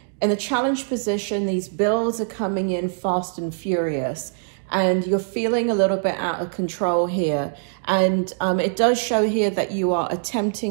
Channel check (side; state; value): left; silent; digital silence